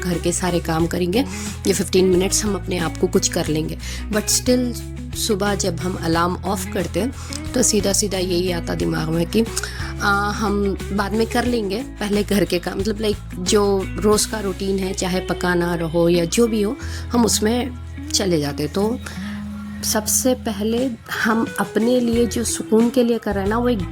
के सारे काम करेंगे, ये 15 मिनट्स हम अपने आप को कुछ कर लेंगे, बट स्टिल सुबह जब हम अलार्म ऑफ करते तो सीधा सीधा यही आता दिमाग में कि हम बाद में कर लेंगे, पहले घर के काम, जो रोज़ का रूटीन है, चाहे पकाना रहो या जो भी हो, हम उसमें चले जाते। तो सबसे पहले हम अपने लिए जो सुकून के लिए कर रहे हैं ना, वो एक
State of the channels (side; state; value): both; identical; correlation 1.00